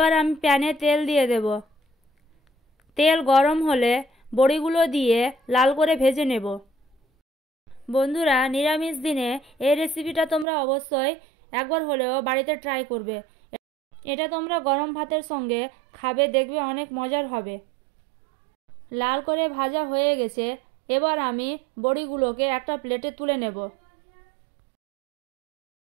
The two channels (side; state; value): left; drops out; at 10.5 s